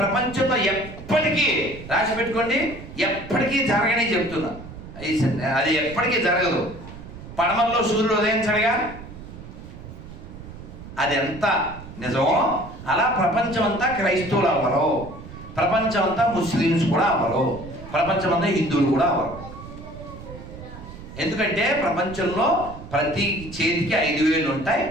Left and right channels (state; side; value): noise; right; rumble, 14 dB below the sound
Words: ప్రపంచంలో ఎప్పటికీ రాసి పెట్టుకోండి, ఎప్పటికీ జరగనే చెప్తున్నా, అది ఎప్పటికీ జరగదు. పడమల్లో సూర్యుడు ఉదయించడుగా, అది ఎంత నిజమో అలా ప్రపంచం అంతా క్రైస్తవులు అవ్వరు, ప్రపంచం అంతా ముస్లిమ్స్ కూడా అవ్వరు, ప్రపంచం అంతా హిందువులు కూడా అవ్వరు. ఎందుకంటే ప్రపంచంలో ప్రతి చేతికి 5 వేళ్ళు ఉంటాయి.